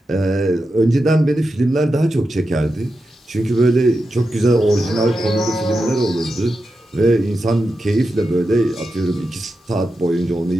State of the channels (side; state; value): both; normal; correlation 0.89